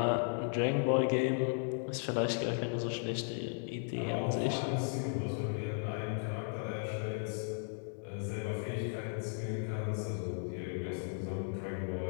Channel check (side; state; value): right; silent; 54 dB below the other